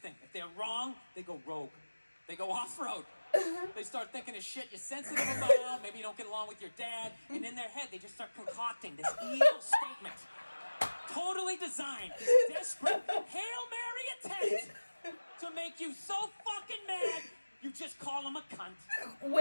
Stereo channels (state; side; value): inverted; both; correlation -1.00